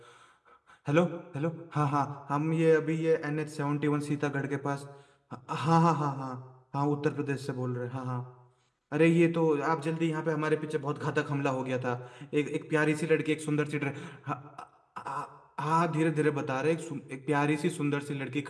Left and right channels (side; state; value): both; identical; correlation 1.00